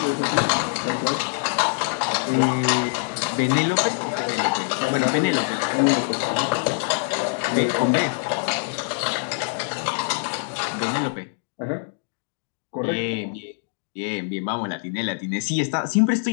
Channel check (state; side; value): silent; right; digital silence